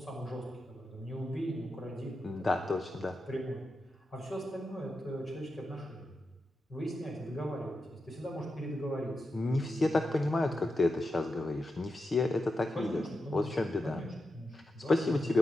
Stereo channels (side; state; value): both; normal; correlation 0.89